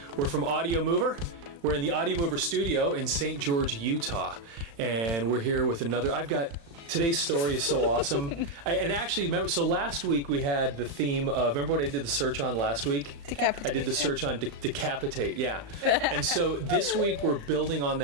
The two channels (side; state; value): left; late; 35 ms